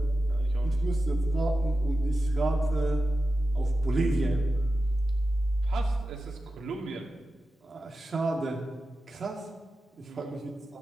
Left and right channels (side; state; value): both; normal; correlation 0.93